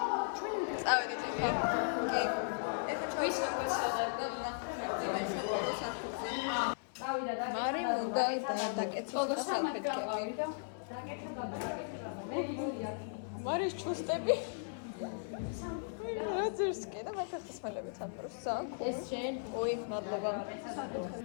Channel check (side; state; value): right; silent; 53 dB below the other